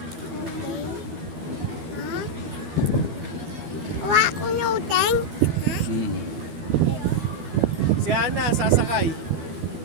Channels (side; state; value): left; late; 12 ms